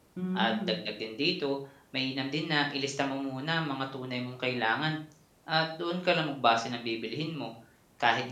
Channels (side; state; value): both; identical; correlation 1.00